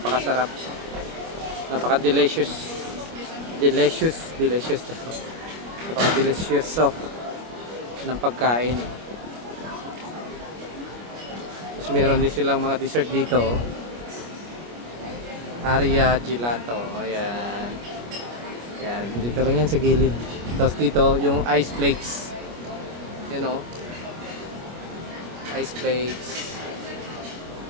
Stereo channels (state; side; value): late; left; 25 ms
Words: Napaka-delicious. Delicious. Napaka-delicious ng pagkain. Meron din silang mga dessert dito. Aria Gelato. Ayan. Ayan. Dito lang yan sa gilid. Tapos dito yung ice flakes. You know. Ice flakes.